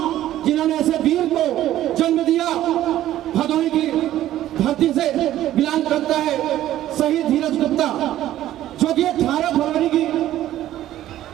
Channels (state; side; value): quieter; left; 13.3 dB